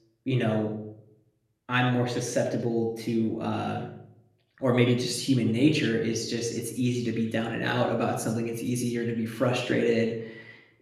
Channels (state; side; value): identical; both; correlation 1.00